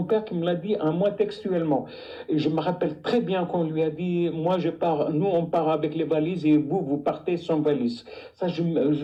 père qui me l'a dit à moi textuellement. Et je me rappelle très bien qu'on lui a dit, moi je pars, nous on part avec les valises et vous partez sans valise. Ça,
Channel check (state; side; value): identical; both; correlation 1.00